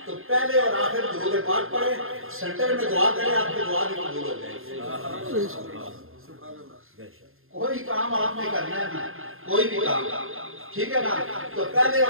तो पहले और आखिर दुरूद पाक पढ़े, सेंटर में दुआ करें, आपकी दुआ भी कबूल हो जाएगी। कोई काम आपने करना है ना, कोई भी काम, ठीक है ना, तो पहले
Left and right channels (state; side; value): late; left; 0.61 ms